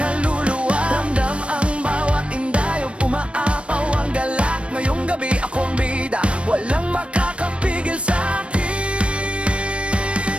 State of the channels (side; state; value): left; late; 0.060 ms